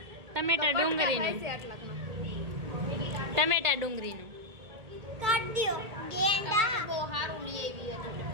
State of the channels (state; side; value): late; left; 1.8 ms